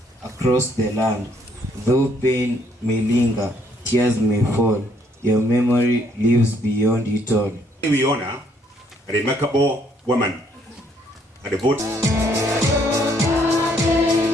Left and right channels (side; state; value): both; normal; correlation 0.67